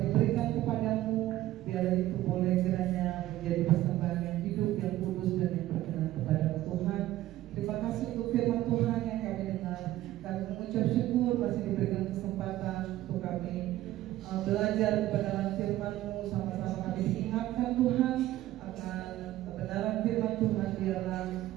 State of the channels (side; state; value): left; quieter; 14.9 dB